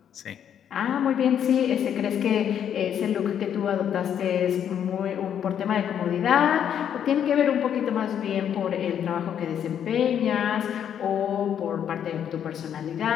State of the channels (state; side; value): quieter; right; 9.1 dB